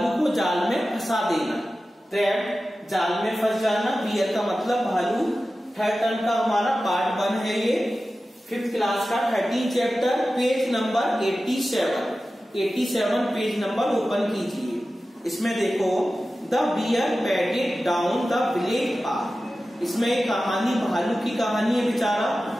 को जाल में फंसा देना। ट्रैप्ड जाल में फंस जाना, बियर का मतलब भालू। थर्ड टर्म का हमारा पार्ट 1 है ये 5th क्लास का 13 chapter, page number 87 page number open कीजिए। इसमें देखो the bear padded down the village path. इसमें एक कहानी, भालू की कहानी है। बेचारा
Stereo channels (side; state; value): both; normal; correlation 0.94